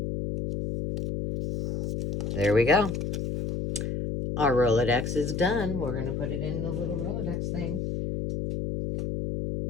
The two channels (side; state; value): left; noise; hum, 3 dB below the sound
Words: There we go. Our Rolodex is done. We're going to put it in the little Rolodex thing.